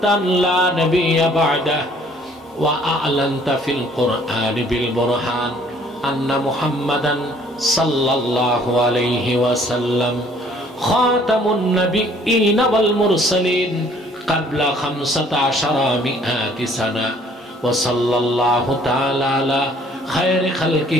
أن لا نبي بعده وأعلنت في القرآن بالبرهان أن محمدا صلى الله عليه وسلم خاتم النبيين والمرسلين قبل 1500 سنة وصلى الله تعالى على خير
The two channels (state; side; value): normal; both; correlation 0.59